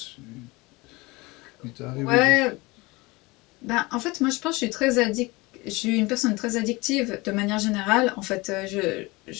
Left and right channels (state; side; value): quieter; right; 23.5 dB